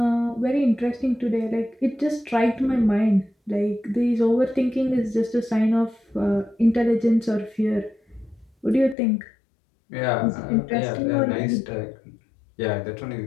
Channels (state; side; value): drops out; right; at 9.0 s